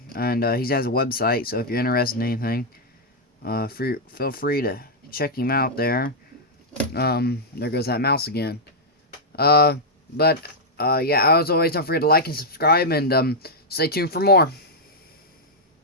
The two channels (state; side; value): normal; both; correlation -0.05